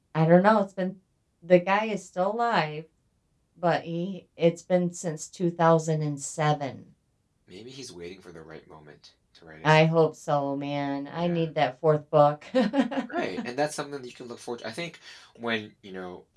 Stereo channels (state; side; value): identical; both; correlation 1.00